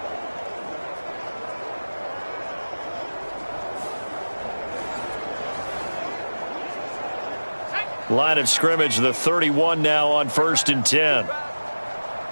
Line of scrimmage, the 31 now on 1st and 10.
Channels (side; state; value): both; inverted; correlation -1.00